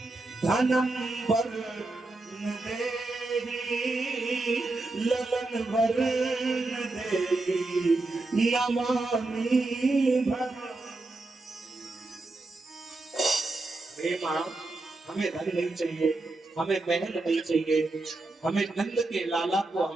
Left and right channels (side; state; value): left; quieter; 3.1 dB